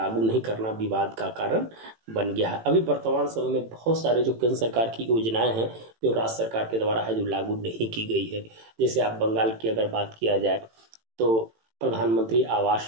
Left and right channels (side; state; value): left; late; 18 ms